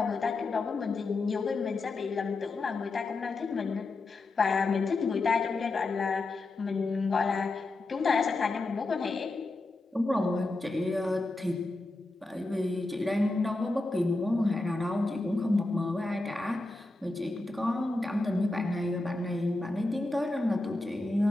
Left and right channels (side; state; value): right; quieter; 3.1 dB